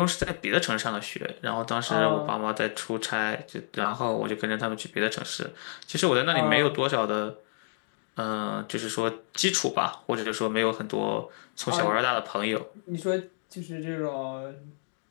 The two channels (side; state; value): right; silent; digital silence